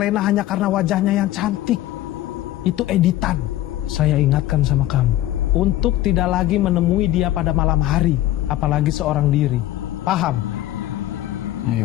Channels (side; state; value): right; quieter; 14.5 dB